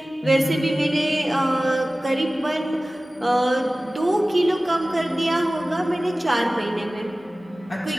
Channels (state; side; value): normal; both; correlation 0.97